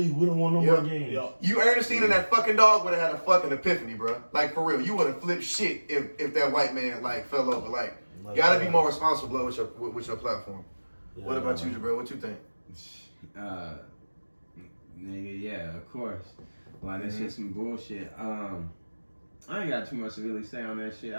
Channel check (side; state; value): both; inverted; correlation -1.00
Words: We don't want no more games. Yep. You, Ernestine, and that fucking dog would have had a fucking epiphany, bro. Like, for real. You would have flipped shit if that white man, like, fell over. Like, you gotta be more responsible with your platform. Yeah, what about you, Jabril? What you think? Nigga, yeah, of course. Like, that shit's some bullshit. I ain't got too much to really say on that shit.